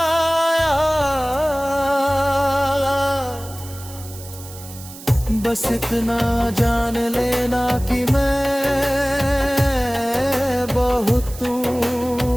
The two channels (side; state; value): right; noise; hiss, 16 dB below the sound